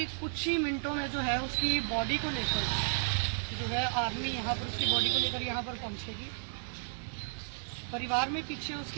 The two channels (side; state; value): left; silent; digital silence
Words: कुछ ही मिनटों में जो है उसकी बॉडी को लेकर जो है आर्मी यहाँ पर उसकी बॉडी को लेकर यहाँ पर पहुँचेगी। परिवार में पीछे